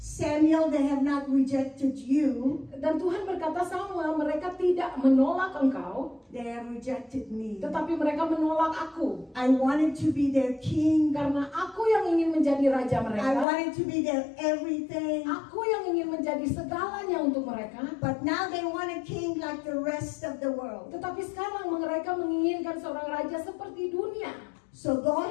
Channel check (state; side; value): drops out; right; at 13.5 s